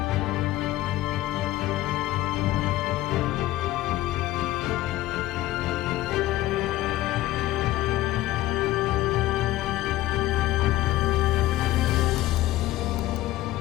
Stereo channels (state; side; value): quieter; right; 16.1 dB